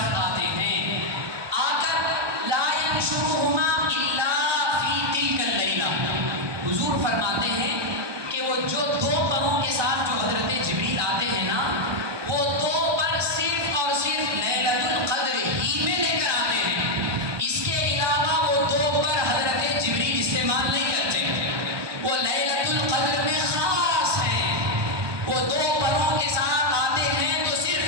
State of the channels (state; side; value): late; left; 1.2 ms